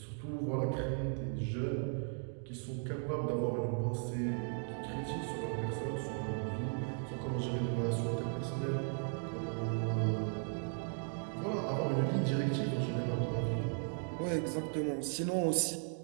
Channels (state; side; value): silent; left; 53 dB below the other